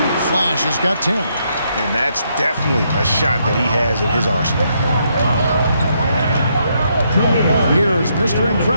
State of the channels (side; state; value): both; inverted; correlation -0.76